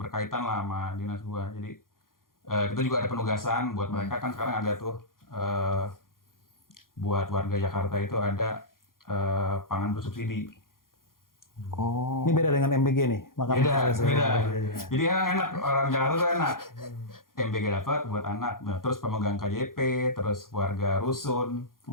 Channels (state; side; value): late; right; 0.91 ms